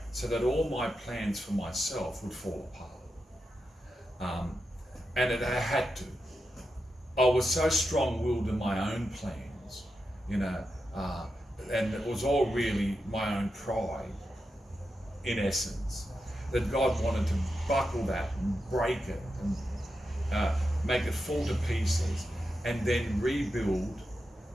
so that all my plans for myself would fall apart. And I had to. I was so strong-willed in my own plans, and it was all really my own pride, in essence, that God wanted to buckle that and break it and make it fall to pieces and then rebuild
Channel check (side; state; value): both; normal; correlation 0.88